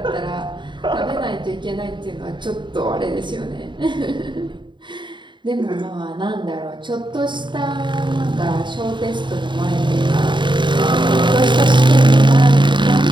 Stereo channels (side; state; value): left; late; 0.23 ms